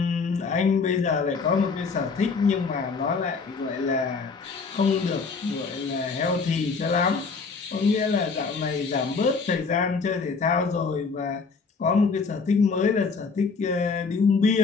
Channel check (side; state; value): right; quieter; 4.8 dB